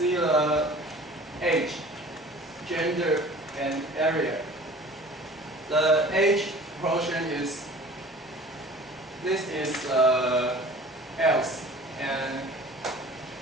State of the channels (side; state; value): both; normal; correlation 0.45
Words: the age, gender, and area. The age proportion is, this is else, and